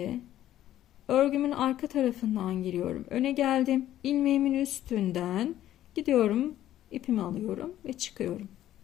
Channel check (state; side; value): quieter; right; 12.8 dB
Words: örgümün arka tarafından giriyorum. Öne geldim. İlmeğimin üstünden gidiyorum. İpimi alıyorum ve çıkıyorum.